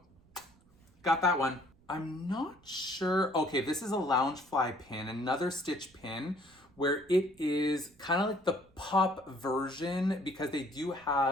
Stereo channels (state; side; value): noise; right; rumble, 29 dB below the sound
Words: got that one. I'm not sure. Okay, this is a Loungefly pin, another Stitch pin, where it is kind of like the pop version, because they do